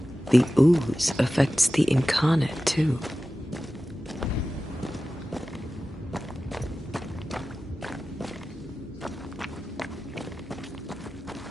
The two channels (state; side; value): normal; both; correlation 0.95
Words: The ooze affects the incarnate, too.